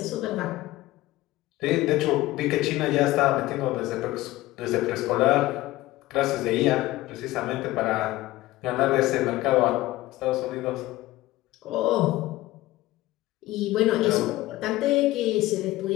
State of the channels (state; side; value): quieter; right; 17.5 dB